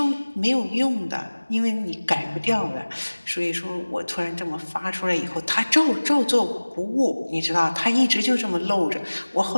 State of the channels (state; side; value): inverted; both; correlation -1.00